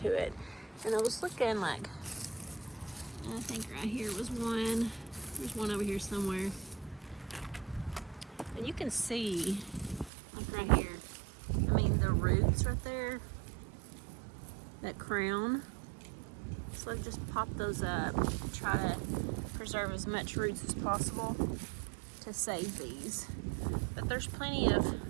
it. And I was looking like, I think right here was one. There's one over here somewhere. And you can see, like right here, I mean the roots right there, that crown. So I've just popped those up, try to preserve as much roots as possible to save these. But there's plenty of,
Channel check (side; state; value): left; drops out; at 10.1 s